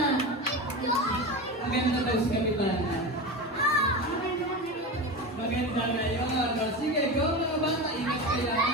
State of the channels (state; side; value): normal; both; correlation 0.24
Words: Maganda daw si Kapitana. Maganda na yun. O, sige, go mga bata. Ingat kayo.